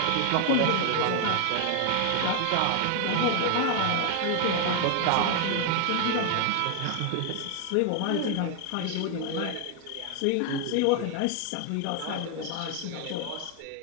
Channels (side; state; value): both; different; correlation 0.00